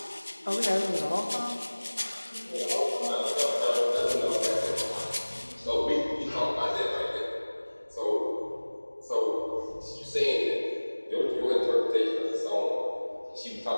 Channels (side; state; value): both; inverted; correlation -1.00